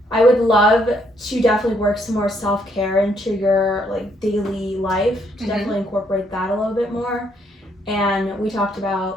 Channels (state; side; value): normal; both; correlation 0.71